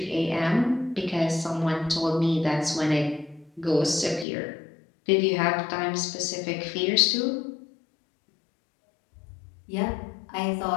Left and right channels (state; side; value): drops out; right; at 4.2 s